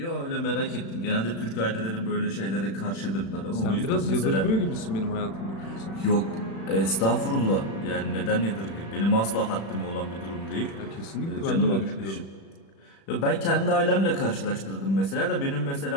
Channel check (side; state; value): right; late; 36 ms